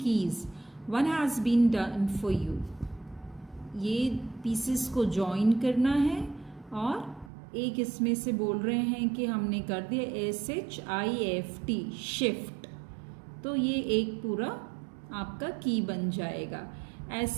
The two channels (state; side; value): drops out; left; at 7.3 s